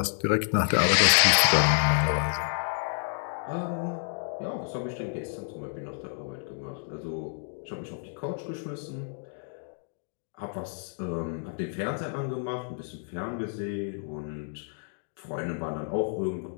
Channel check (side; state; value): right; silent; 58 dB below the other